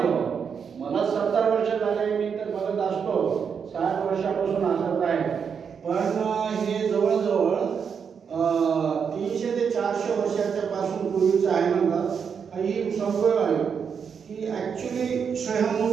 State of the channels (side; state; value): left; quieter; 6.7 dB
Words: मला 70 वर्ष झाले, मी तर बघत असतो 60 वर्षापासून असत आहे. पण हे जवळजवळ 300 ते 400 वर्षाच्या पासून पूर्वीचं आहे म्हणतात. ही संभव आहे की ॲक्च्युली स्वयंभू